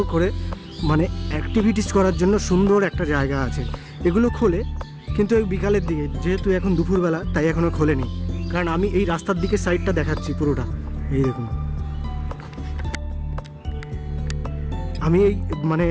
করে মানে অ্যাক্টিভিটিস করার জন্য সুন্দর একটা জায়গা আছে। এগুলো খোলে কিন্তু ওই বিকালের দিকে, যেহেতু এখন দুপুরবেলা তাই এখনও খোলেনি। কারণ আমি এই রাস্তার দিকে সাইডটা দেখাচ্ছি পুরোটা, এই দেখুন। আমি এই মানে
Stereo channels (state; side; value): identical; both; correlation 1.00